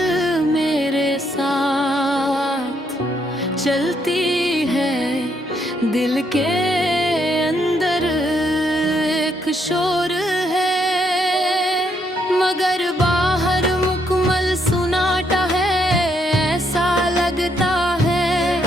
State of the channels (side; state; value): both; normal; correlation 0.74